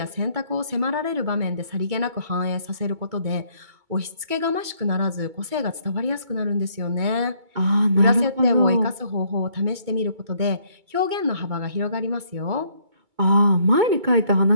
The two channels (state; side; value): late; left; 2.2 ms